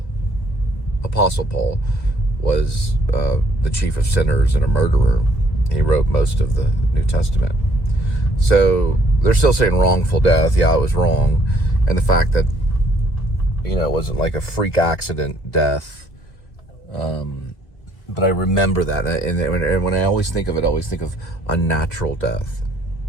Apostle Paul, was the chief of sinners and a murderer. He wrote most of the New Testament. So they're still saying wrongful death. Yeah, it was wrong. And the fact that, it wasn't like a freak accident death. But I remember that. And when I always think of it, I always think of unnatural death.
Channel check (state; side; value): late; right; 2.3 ms